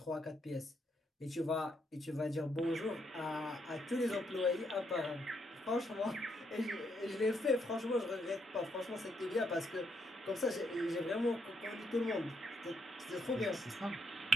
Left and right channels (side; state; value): both; normal; correlation 0.76